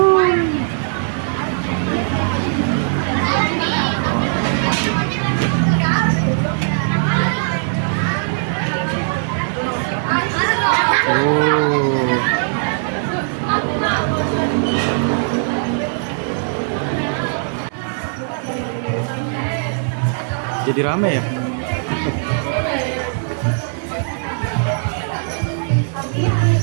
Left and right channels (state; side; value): silent; left; digital silence